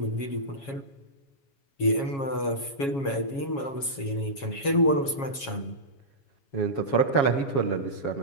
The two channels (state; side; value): late; right; 7.3 ms